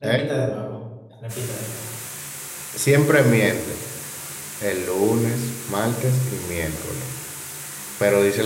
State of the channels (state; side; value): identical; both; correlation 1.00